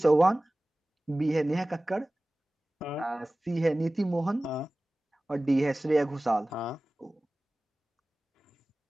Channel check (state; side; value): normal; both; correlation 0.97